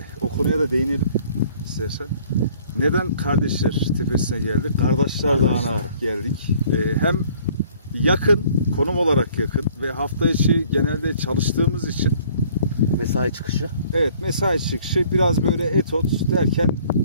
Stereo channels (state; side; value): inverted; both; correlation -0.56